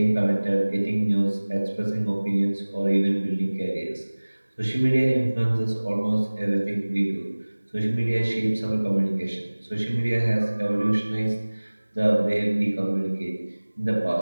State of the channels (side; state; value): both; inverted; correlation -1.00